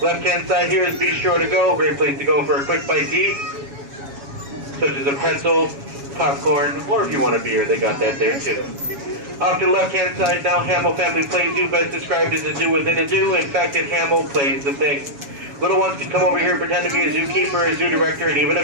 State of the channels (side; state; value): left; late; 7.2 ms